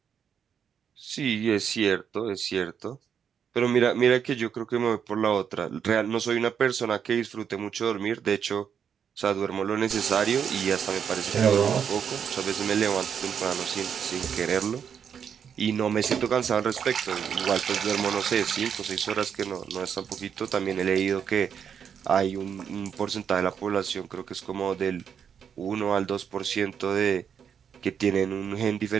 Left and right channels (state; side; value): quieter; left; 7.6 dB